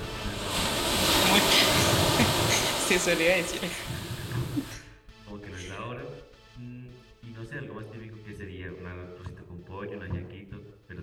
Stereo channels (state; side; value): identical; both; correlation 1.00